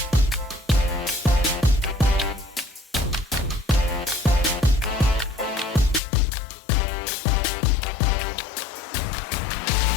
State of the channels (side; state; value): right; drops out; at 6.0 s